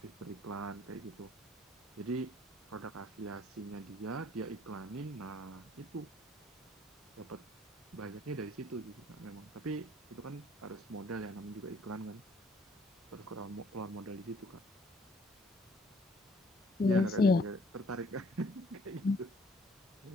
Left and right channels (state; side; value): normal; both; correlation 0.60